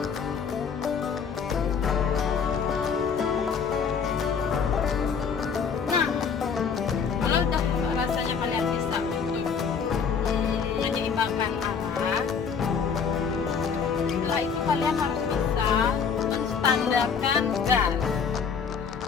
Nah, kalau udah rasanya kalian bisa untuk menyeimbangkan arah, setelah itu kalian harus bisa menstandarkan gas.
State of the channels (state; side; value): quieter; right; 6.3 dB